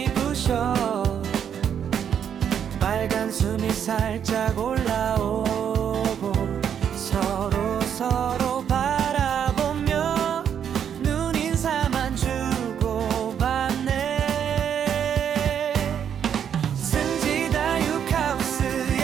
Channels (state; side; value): quieter; left; 8.5 dB